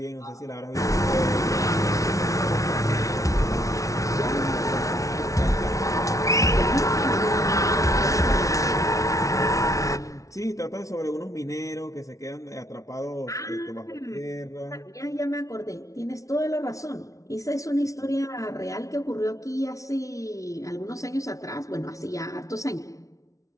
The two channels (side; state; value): right; late; 0.16 ms